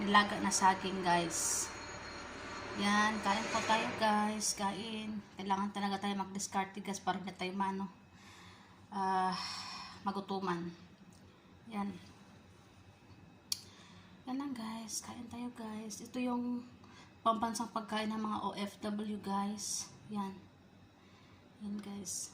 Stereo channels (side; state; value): both; identical; correlation 1.00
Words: na saging guys. Yan, kain po tayo guys. Kain. Kailangan talaga tayo mag-discard guys para hindi tayo magutuman. Yan. Yan lang guys. Kain tayo guys. Ito yung pambansang pagkain ng mga OFW guys. Yan. Yan guys.